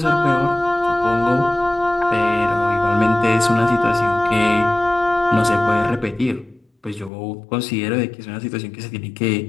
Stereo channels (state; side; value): drops out; right; at 7.1 s